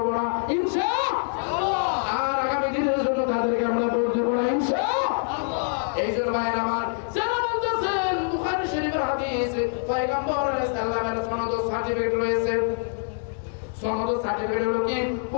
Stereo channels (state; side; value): silent; right; 62 dB below the other